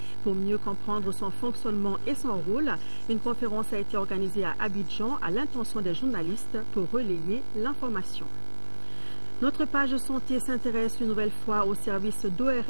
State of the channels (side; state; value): both; inverted; correlation -1.00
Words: Pour mieux comprendre son fonctionnement et son rôle, une conférence a été organisée à Abidjan à l'intention des journalistes pour relayer l'information. Notre page santé s'intéresse une nouvelle fois au service